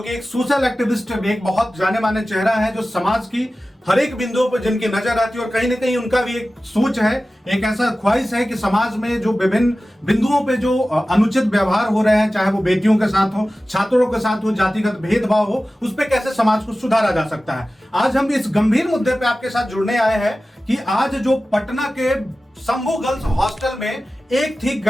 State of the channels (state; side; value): normal; both; correlation 0.95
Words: कि एक सोशल एक्टिविस्ट, एक बहुत जाने माने चेहरा है जो समाज की हर एक बिंदुओं पर जिनकी नजर आती है और कहीं ना कहीं उनका भी एक सोच है, एक ऐसा ख्वाहिश है कि समाज में जो विभिन्न बिंदुओं पे जो अनुचित व्यवहार हो रहे हैं, चाहे वो बेटियों के साथ हो, छात्रों के साथ हो, जातिगत भेदभाव हो, उस पे कैसे समाज को सुधारा जा सकता है। आज हम इस गंभीर मुद्दे पे आपके साथ जुड़ने आए हैं कि आज जो पटना के शंभू गर्ल्स हॉस्टल में एक थी